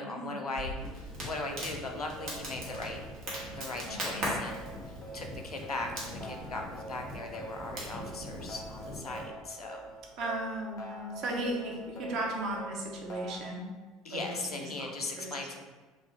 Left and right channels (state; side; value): normal; both; correlation 0.45